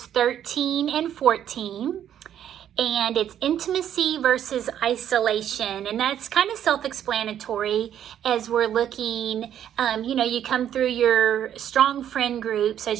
13 and 14. And it's intimacy versus isolation. And that's kind of self-explanatory as we're looking, you come through your strong friend groups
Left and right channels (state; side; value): quieter; left; 10.2 dB